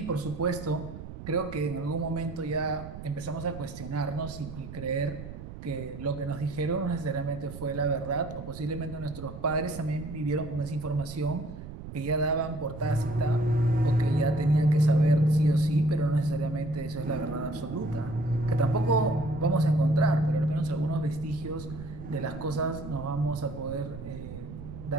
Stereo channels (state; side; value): noise; right; rumble, 12 dB below the sound